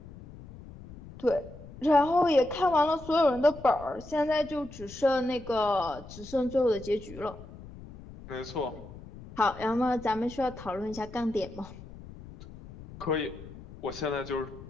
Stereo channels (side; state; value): left; noise; rumble, 16 dB below the sound